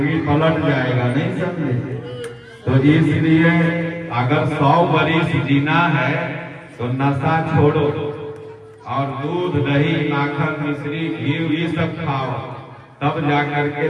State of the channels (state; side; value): identical; both; correlation 1.00